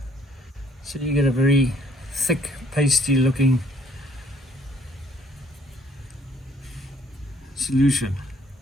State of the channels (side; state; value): both; normal; correlation 0.62